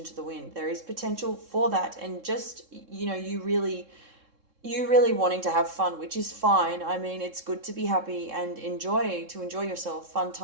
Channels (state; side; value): late; left; 3.7 ms